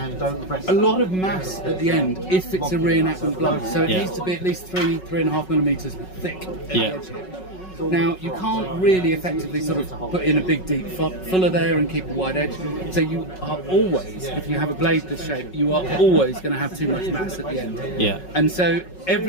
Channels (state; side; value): late; right; 5.4 ms